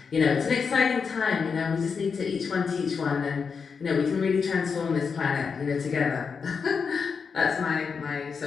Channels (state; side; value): quieter; right; 5.7 dB